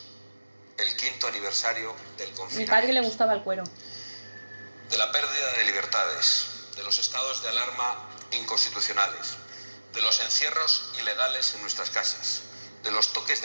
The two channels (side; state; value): both; inverted; correlation -1.00